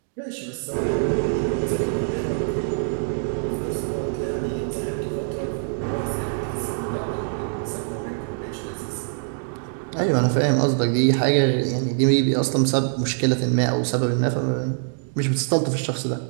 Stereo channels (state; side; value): silent; left; digital silence